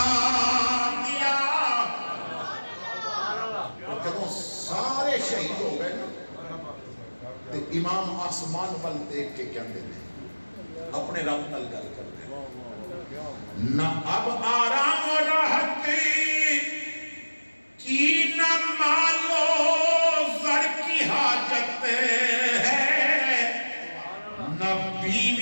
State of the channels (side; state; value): both; inverted; correlation -1.00